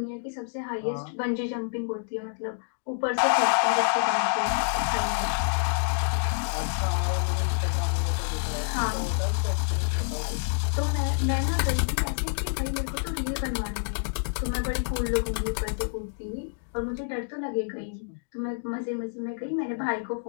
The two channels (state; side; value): silent; right; digital silence